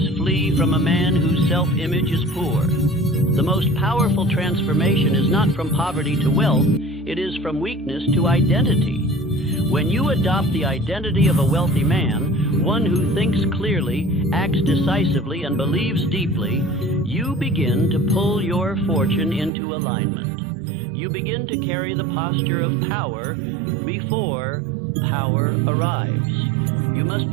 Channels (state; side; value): drops out; left; at 19.5 s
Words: flee from a man whose self-image is poor. The most powerful transformation is not from poverty to wealth, it is from weakness to identity. When you adopt the identity of a wealthy man, one who thinks clearly, acts decisively, and believes deeply, you begin to pull your fortune into alignment. You begin to carry the posture of power before power arrives. You must